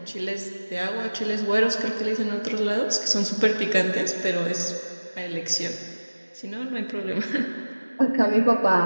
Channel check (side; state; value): both; inverted; correlation -1.00